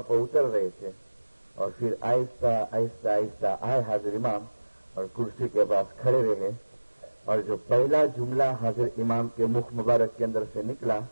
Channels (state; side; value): inverted; both; correlation -1.00